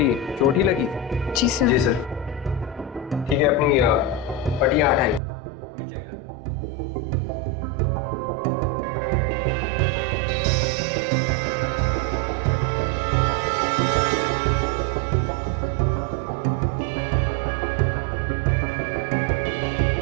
चोट ही लगी? जी सर। जी सर। ठीक है, अपनी पट्टियां हटाइए, हमें चेक करना है।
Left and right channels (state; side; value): drops out; left; at 5.2 s